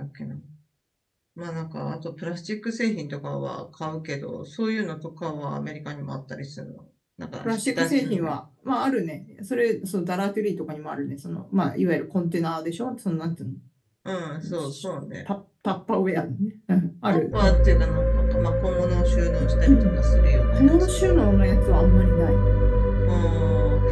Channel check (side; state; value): both; identical; correlation 1.00